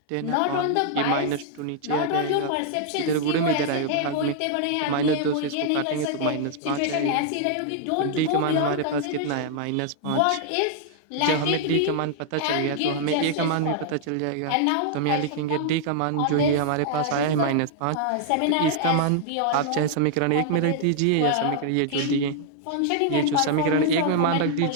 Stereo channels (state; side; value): different; both; correlation -0.01